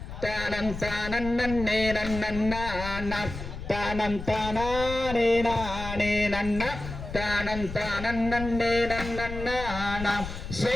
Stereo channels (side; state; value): left; noise; rumble, 8 dB below the sound